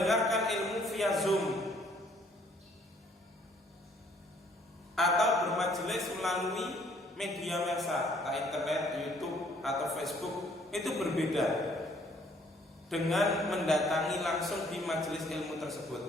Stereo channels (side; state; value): both; normal; correlation 0.62